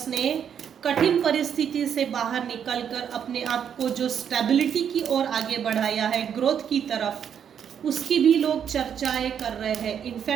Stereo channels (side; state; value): left; quieter; 8.3 dB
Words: ने कठिन परिस्थिति से बाहर निकलकर अपने आप को जो स्टेबिलिटी की ओर आगे बढ़ाया है, ग्रोथ की तरफ, उसकी भी लोग चर्चाएं कर रहे हैं।